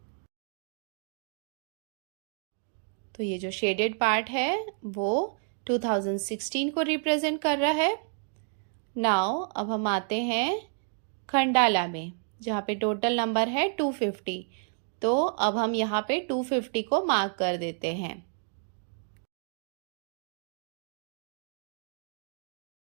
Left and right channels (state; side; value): silent; left; 58 dB below the other